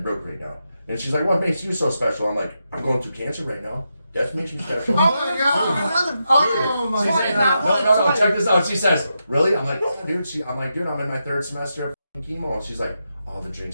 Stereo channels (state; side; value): inverted; both; correlation -0.86